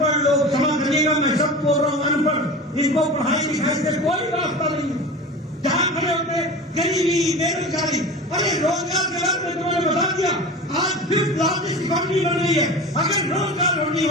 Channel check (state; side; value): normal; both; correlation 0.32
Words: लोग, क्षमा करिएगा मैं सब बोल रहा हूं अनपढ़, इनको पढ़ाई लिखाई से कोई रास्ता नहीं है। जहां खड़े होते गरीबी, बेरोजगारी, अरे रोजगार के बारे में तुमने बता दिया। आज 5th लार्जेस्ट इकोनॉमी बन रही है। अगर रोजगार नहीं